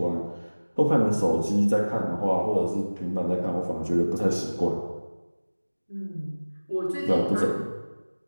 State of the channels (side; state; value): both; inverted; correlation -1.00